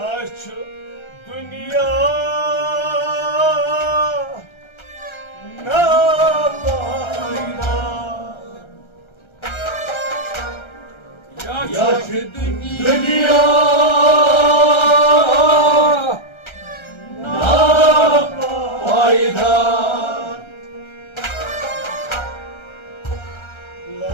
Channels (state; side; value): late; right; 1.3 ms